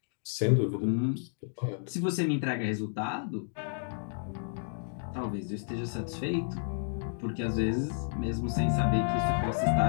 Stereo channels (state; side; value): silent; right; digital silence